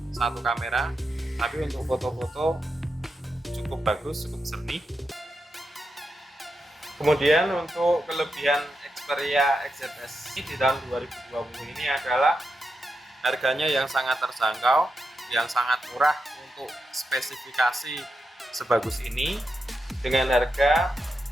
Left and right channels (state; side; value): normal; both; correlation 0.87